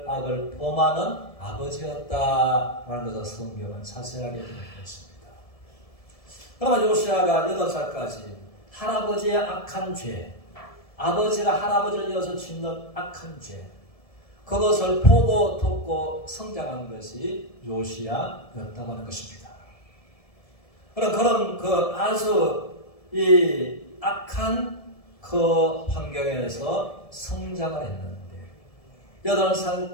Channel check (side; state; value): right; late; 1.7 ms